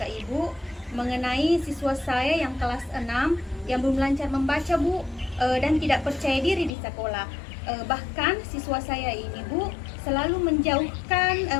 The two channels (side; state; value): right; drops out; at 6.7 s